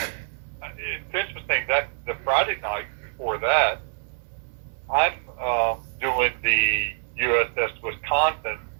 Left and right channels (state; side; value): silent; left; 61 dB below the other